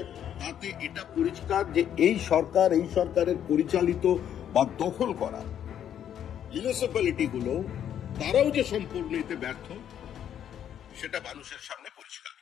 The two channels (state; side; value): quieter; right; 9.7 dB